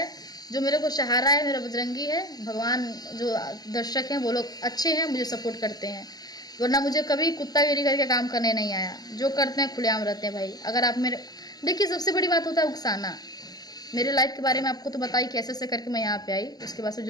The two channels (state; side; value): late; right; 0.19 ms